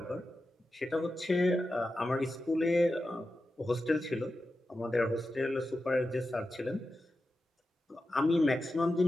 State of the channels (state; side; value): normal; both; correlation 0.91